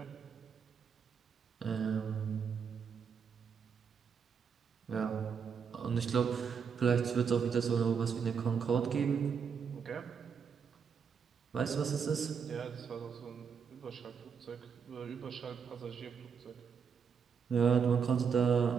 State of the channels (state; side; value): quieter; left; 6.6 dB